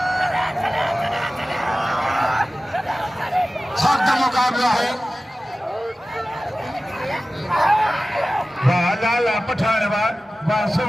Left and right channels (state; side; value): normal; both; correlation 0.96